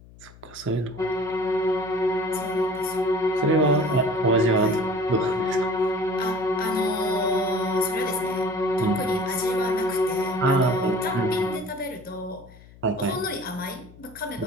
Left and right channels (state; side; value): noise; left; hum, 22 dB below the sound